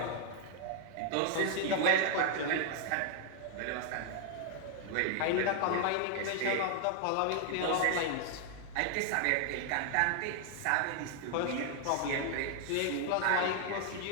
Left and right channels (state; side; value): different; both; correlation 0.00